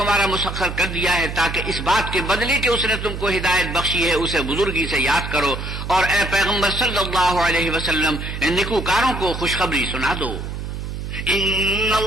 مسخر کر دیا ہے تاکہ اس بات کے بدلے کہ اس نے تم کو ہدایت بخشی ہے اسے بزرگی سے یاد کرو. اور اے پیغمبر صلی اللہ علیہ وسلم نیکوکاروں کو خوشخبری سنا دو. ان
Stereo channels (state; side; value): noise; right; hum, 6 dB below the sound